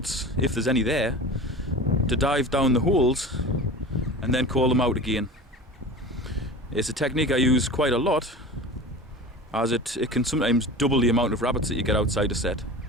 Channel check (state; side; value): normal; both; correlation 0.34